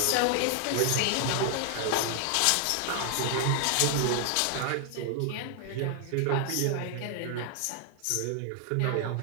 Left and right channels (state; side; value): different; both; correlation 0.00